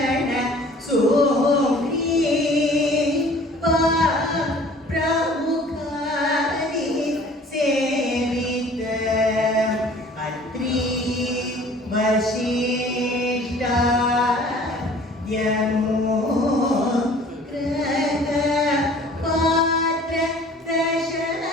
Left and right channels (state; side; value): normal; both; correlation 0.50